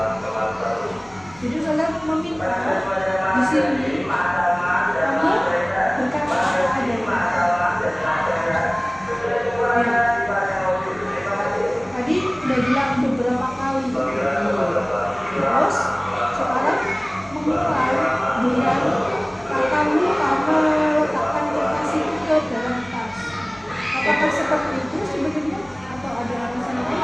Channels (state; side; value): noise; left; hum, 25 dB below the sound